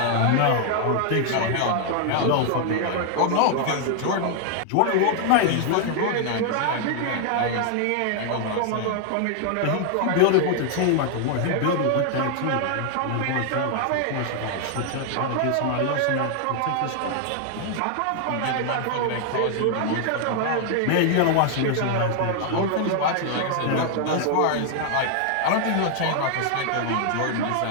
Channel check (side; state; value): both; different; correlation 0.00